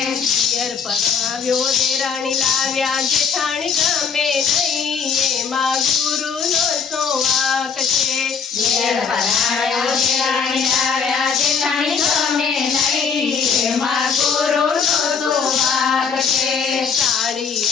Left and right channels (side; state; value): right; quieter; 6.1 dB